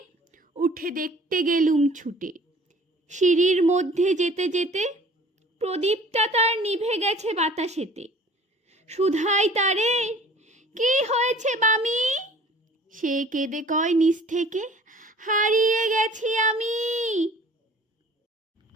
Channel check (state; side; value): normal; both; correlation 0.50